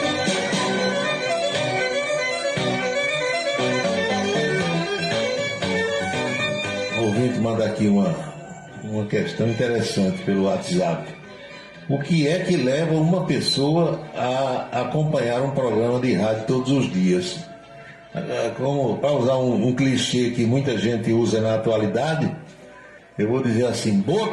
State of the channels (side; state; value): both; identical; correlation 1.00